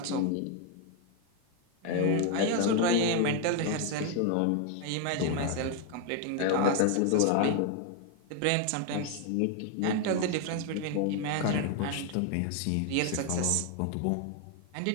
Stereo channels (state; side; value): different; both; correlation 0.01